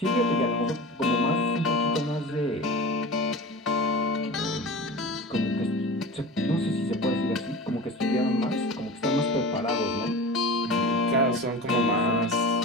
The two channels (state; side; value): normal; both; correlation 0.33